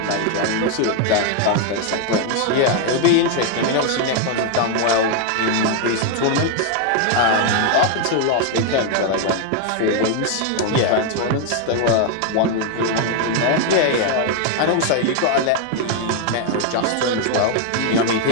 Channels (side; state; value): both; different; correlation 0.00